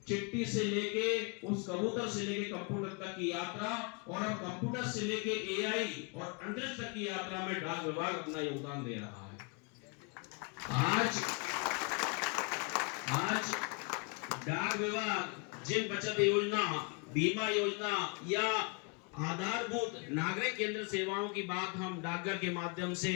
चिट्ठी से लेके उस कबूतर से लेके कंप्यूटर तक की यात्रा, और अब कंप्यूटर से लेके एआई और अंतरिक्ष तक की यात्रा में डाक विभाग अपना योगदान दे रहा है। आज डाक विभाग जिन बचत योजना, बीमा योजना या आधारभूत नागरिक केंद्र सेवाओं की बात हम डाकघर के माध्यम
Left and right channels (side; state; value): right; quieter; 31.4 dB